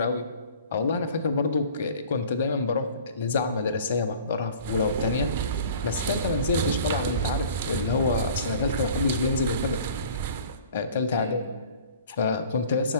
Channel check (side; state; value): both; inverted; correlation -0.47